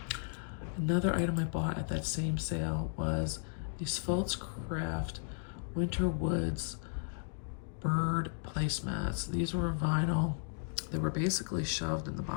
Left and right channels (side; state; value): right; silent; digital silence